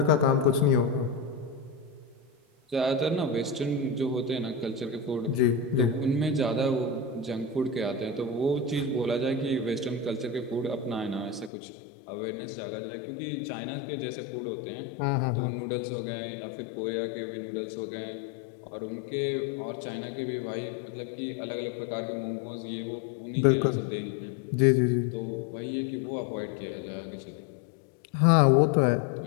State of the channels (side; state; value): right; drops out; at 11.5 s